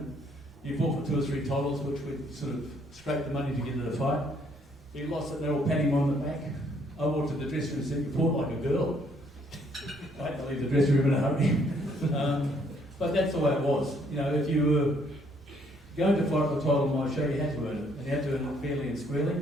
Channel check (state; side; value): normal; both; correlation 0.67